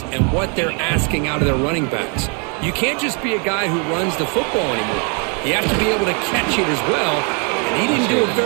and what they're asking out of their running backs. You can't just be a guy who runs the football anymore. You have to be able to catch it as well, and he didn't do a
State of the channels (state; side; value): quieter; left; 36.6 dB